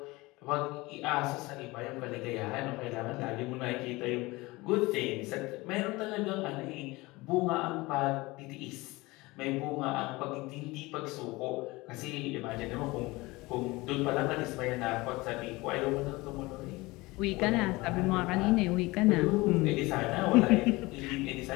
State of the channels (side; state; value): right; quieter; 21.9 dB